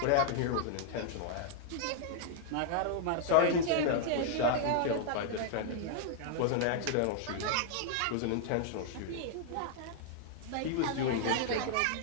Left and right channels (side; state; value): both; different; correlation -0.01